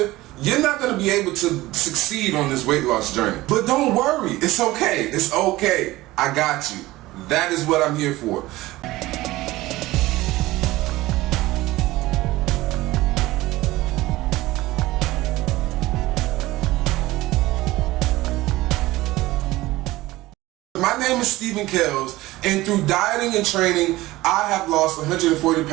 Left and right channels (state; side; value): quieter; left; 18.2 dB